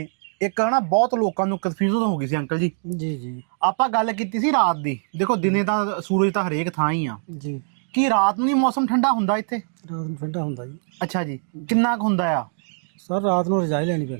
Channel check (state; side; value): silent; left; digital silence